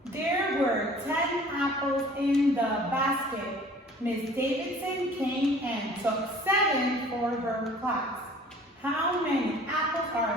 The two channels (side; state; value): both; normal; correlation 0.49